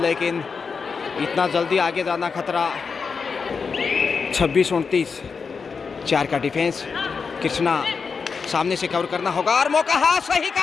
लेकिन इतना जल्दी आगे जाना खतरा। 26-29 4 का डिफेंस। कृष्णा सामने से कवर करना होगा और मौका। हाँ, सही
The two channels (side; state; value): right; quieter; 5.3 dB